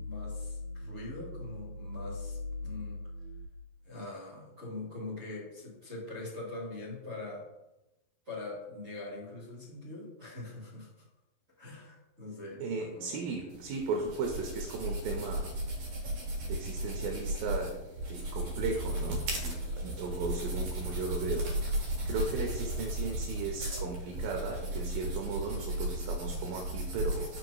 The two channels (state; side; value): late; left; 11 ms